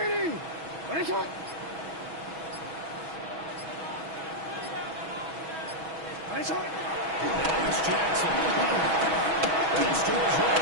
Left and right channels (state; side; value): late; left; 6.2 ms